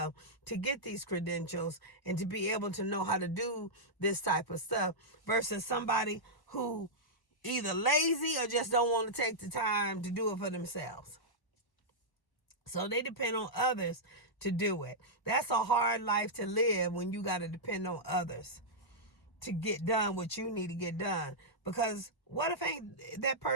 to get these credentials and to be able to know how to do this type of stuff versus somebody who either lazy or just don't want to take the time to do it for themselves. So they depend on others to do it. That's a hard life to live when you got to depend on others to get done what you need to get done. Because what if that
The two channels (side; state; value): right; late; 1.0 ms